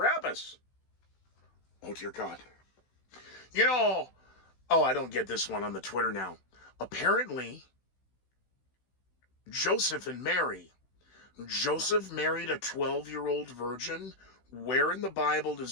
Oh, dear God. I don't get this one on the Twitter now. Apparently, Joseph and Mary. Joseph married a 12-year-old virgin. Where in the Bible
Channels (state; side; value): late; right; 16 ms